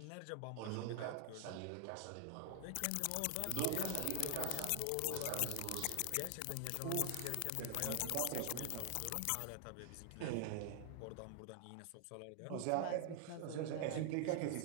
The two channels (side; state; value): both; different; correlation 0.00